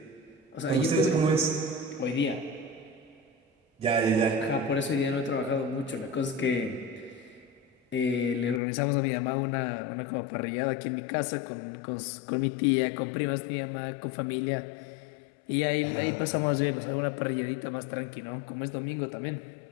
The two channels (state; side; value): drops out; right; at 8.6 s